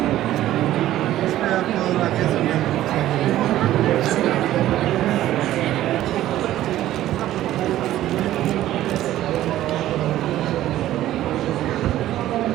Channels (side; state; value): left; quieter; 13.8 dB